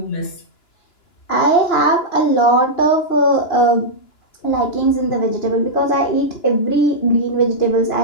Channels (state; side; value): late; right; 2.9 ms